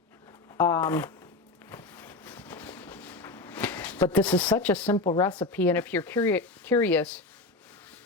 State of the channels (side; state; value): right; quieter; 3.3 dB